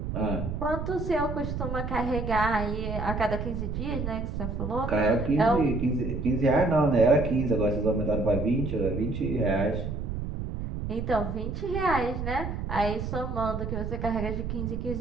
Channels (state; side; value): noise; right; rumble, 4 dB below the sound